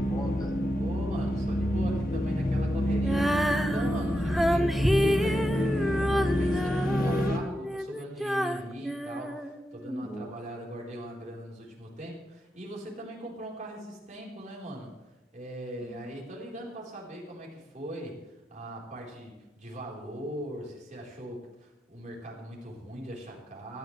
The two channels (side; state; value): both; normal; correlation 0.87